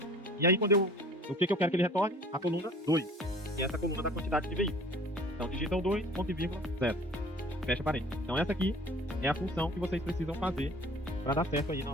E aí quando o que eu quero que ele retorne? A coluna 2, que é essa coluna da quantidade de veículos. Então digita o 2, ponto e vírgula, 0. Fecha parênteses. Então essa aqui é a função que vocês precisam fazer para dar certo aí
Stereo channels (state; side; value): normal; both; correlation 0.48